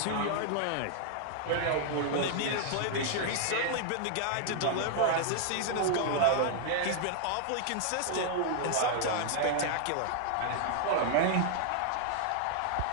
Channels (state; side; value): different; both; correlation -0.01